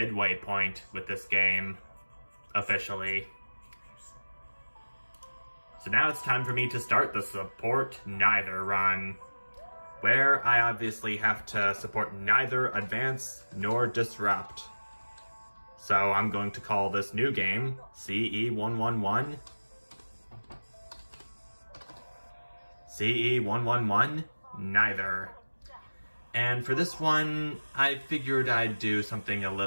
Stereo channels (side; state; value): both; inverted; correlation -1.00